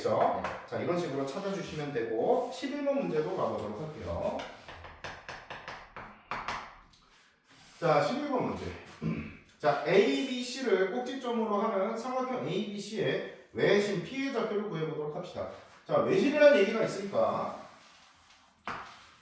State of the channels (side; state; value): both; identical; correlation 1.00